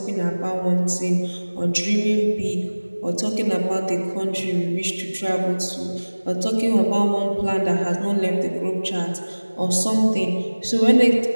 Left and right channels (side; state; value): both; inverted; correlation -1.00